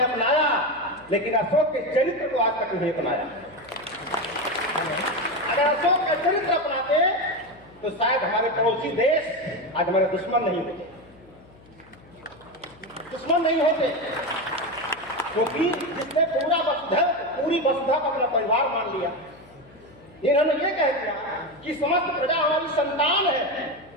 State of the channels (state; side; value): noise; left; hum, 25 dB below the sound